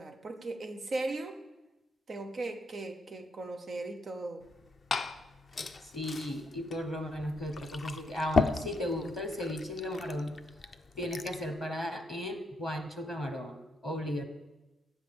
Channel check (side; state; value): both; normal; correlation 0.78